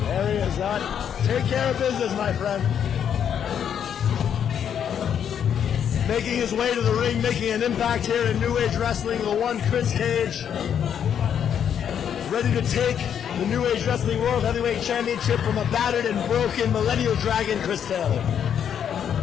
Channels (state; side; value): quieter; right; 8.6 dB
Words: There he is. Take care of business, my friend. Making his way to the ring, making an impact here in New Age Wrestling, the one Kris Kage. Ready to take the New Age Wrestling World Heavyweight Championship from a battered and broken Millennial Dragon, Chris Taylor.